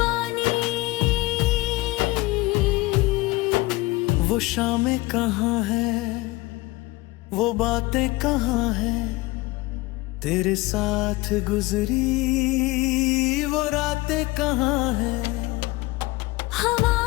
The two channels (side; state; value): right; quieter; 21.2 dB